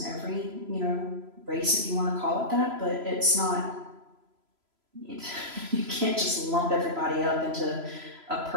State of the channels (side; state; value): left; late; 3.0 ms